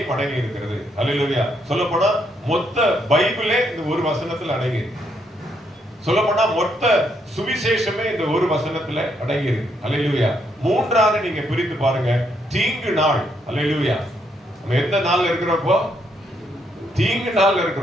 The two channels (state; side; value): normal; both; correlation 0.75